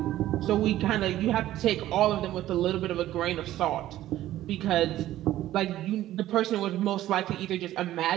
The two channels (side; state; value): left; quieter; 14.0 dB